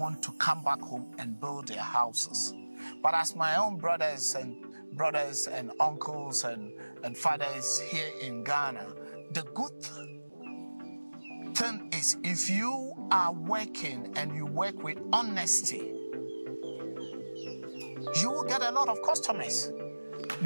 to come back home and build their houses. But as my own brothers and uncles and fathers here in Ghana, the good thing is if you are working and you work with honesty, you will get a lot of customers.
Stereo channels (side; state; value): both; inverted; correlation -1.00